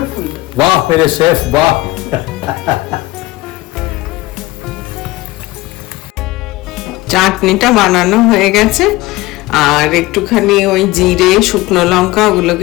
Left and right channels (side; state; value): right; quieter; 19.6 dB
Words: ফুল। বাহ মেরে শেফ, বাহ। চাটনিটা বানানো হয়ে গেছে, আর একটুখানি ওই জিরে, শুকনো লঙ্কা